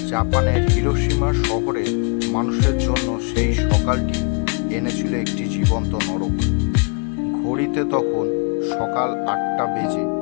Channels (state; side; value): quieter; right; 38.1 dB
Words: জাপানের হিরোশিমা শহরে মানুষের জন্য সেই সকালটি এনেছিল একটি জীবন্ত নরক। ঘড়িতে তখন সকাল 8টা বেজে